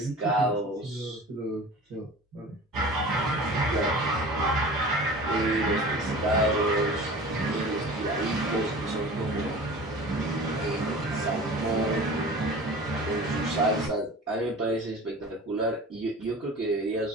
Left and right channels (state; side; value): normal; both; correlation 0.39